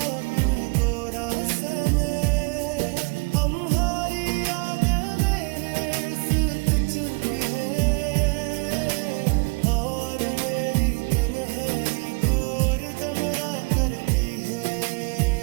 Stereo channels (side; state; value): left; quieter; 30.2 dB